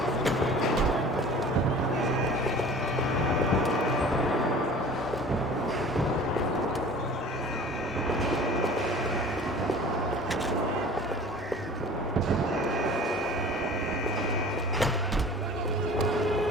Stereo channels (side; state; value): both; normal; correlation 0.43